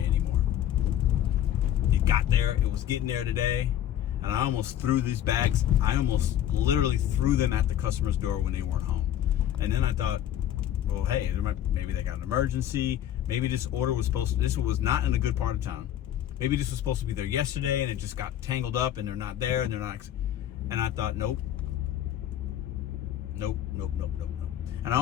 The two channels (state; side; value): quieter; right; 11.2 dB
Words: anymore. It got there. It was getting there today. And I almost threw these bags. I almost literally threw them at the customer's door when they weren't home. And then I thought, well, hey, maybe they got an emergency. Maybe this order was this was not in a good part of town. Maybe this was supposed to be there yesterday and it just got tangled up and they're not there and they're not. And I thought, nope. And I